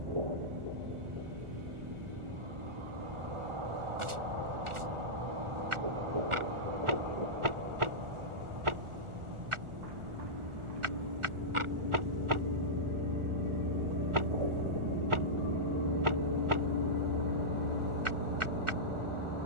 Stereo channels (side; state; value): left; late; 1.4 ms